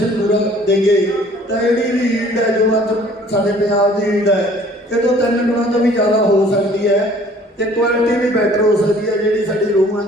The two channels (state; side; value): normal; both; correlation 0.54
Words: ਪੂਰਾ ਦੇਈਏ ਤਾਂ ਜਿਹੜੀ ਵੀ ਈਲਡ ਹੈ ਜੋ ਅੱਜ ਸਾਡੇ ਪੰਜਾਬ ਦੀ ਈਲਡ ਹੈ ਇਹ ਤੋਂ 3 ਗੁਣਾ ਤੋਂ ਵੀ ਜ਼ਿਆਦਾ ਹੋ ਸਕਦੀ ਹੈ ਤੇ ਕੁਆਲਿਟੀ ਵੀ ਬੈਟਰ ਹੋ ਸਕਦੀ ਹੈ, ਜਿਹੜੀ ਸਾਡੀ ਰੂਹਾਂ